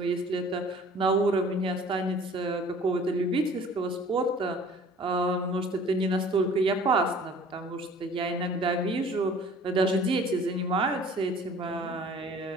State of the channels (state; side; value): normal; both; correlation 0.49